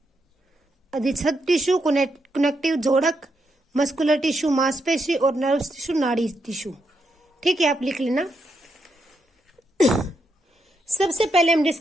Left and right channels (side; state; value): both; normal; correlation 0.81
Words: अधिच्छद टिश्यू, कनेक्टिव जोड़क, मस्कुलर टिश्यू मांसपेशी और नर्व्स टिश्यू नाड़ी टिश्यू। ठीक है, आप लिख लेना। सबसे पहले हम